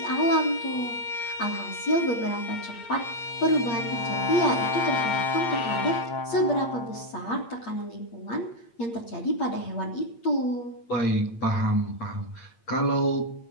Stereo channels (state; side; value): late; right; 8.7 ms